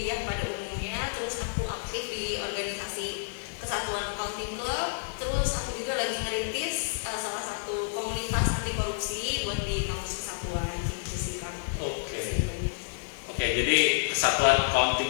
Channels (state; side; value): silent; right; digital silence